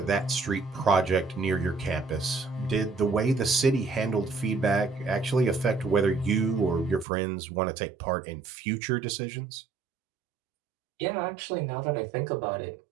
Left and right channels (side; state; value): left; drops out; at 7.1 s